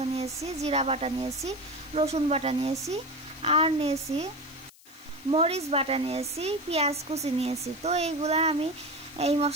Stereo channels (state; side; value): noise; left; hiss, 25 dB below the sound